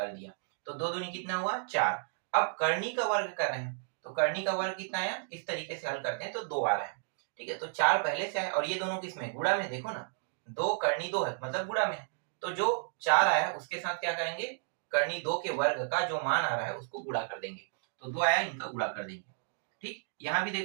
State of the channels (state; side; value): silent; left; digital silence